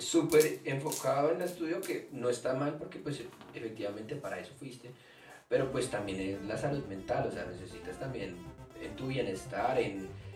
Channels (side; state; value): both; identical; correlation 1.00